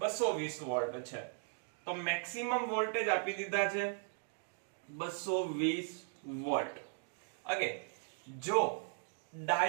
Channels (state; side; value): silent; left; 53 dB below the other